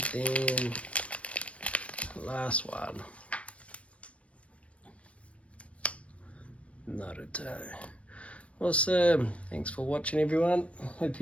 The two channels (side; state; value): right; late; 0.063 ms